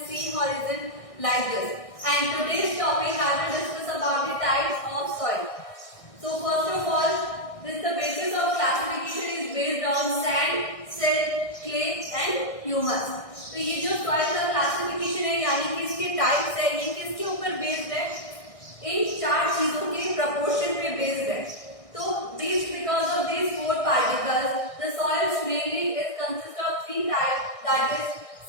C horizon, like this. And today's topic I will discuss about the types of soil. So first of all, the basis of classification is based on sand, silt, clay and humus. तो ये जो soil का classification है यानी कि इसके types है, ये किसके ऊपर बेस्ड है? इन चार चीजों के प्रपोर्शन पे बेस्ड है. तो this because of this four particles the soils mainly is consist of three types, that is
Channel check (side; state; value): right; late; 1.6 ms